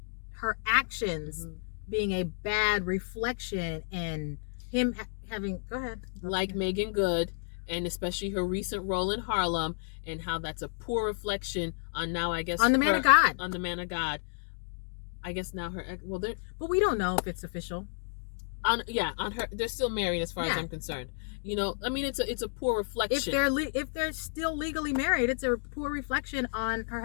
her actions being a bad reflection and him having. Go ahead. Like Meagan Good and especially her recent role in Harlem, and how that's a poor reflection on now, I guess, on the man of God. On the man of God. I guess now her, well, but we don't know if it's official. On her, they're still married as far as I'm concerned. You know, I mean, it's a poor reflection. If they're still legally married, it's a poor reflection on her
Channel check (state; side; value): silent; right; digital silence